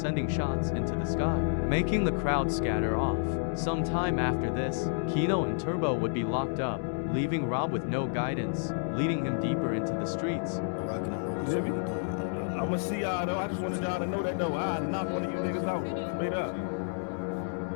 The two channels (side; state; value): right; silent; digital silence